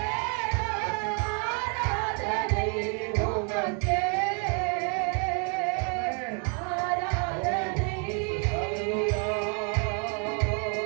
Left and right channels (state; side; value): quieter; left; 39.1 dB